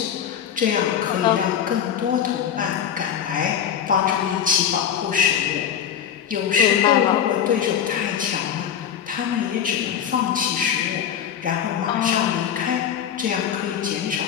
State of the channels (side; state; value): right; quieter; 8.9 dB